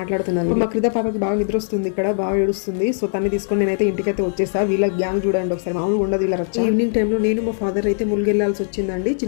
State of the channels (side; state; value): right; silent; digital silence